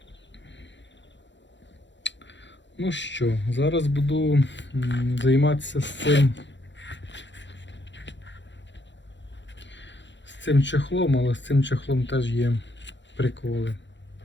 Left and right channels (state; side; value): late; right; 0.53 ms